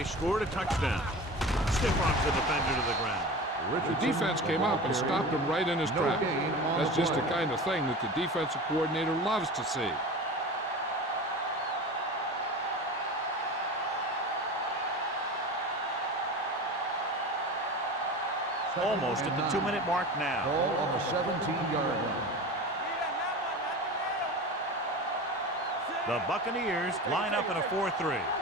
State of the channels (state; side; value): normal; both; correlation 0.32